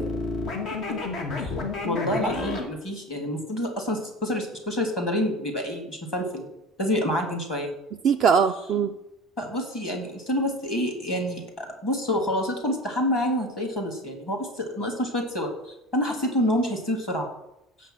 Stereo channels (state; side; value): normal; both; correlation 0.32